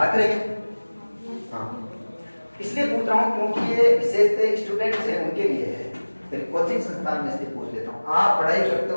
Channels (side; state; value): both; inverted; correlation -1.00